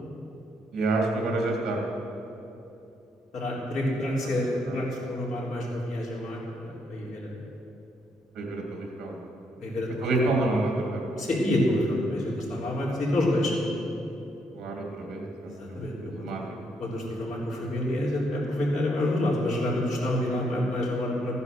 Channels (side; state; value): both; normal; correlation 0.74